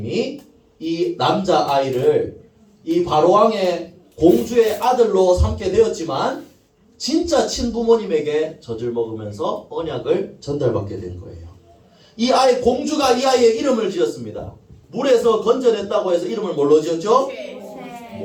이 남자아이를 이 바로왕의 공주의 아들로 삼게 되었지만 진짜 친부모님에게 젖을 먹으면서 언약을 전달받게 된 거예요. 이 아이, 공주가 이 아이의 이름을 지었습니다. 물에서 건져냈다고 해서 이름을 뭘로 지었죠?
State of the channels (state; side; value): identical; both; correlation 1.00